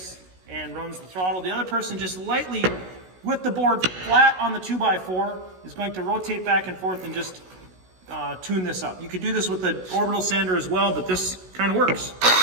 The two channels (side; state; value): left; late; 16 ms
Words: and runs the throttle. The other person just lightly, with the board flat on the 2x4, is going to rotate back and forth and just tune this up. You could do this with the orbital sander as well, but this kind of works.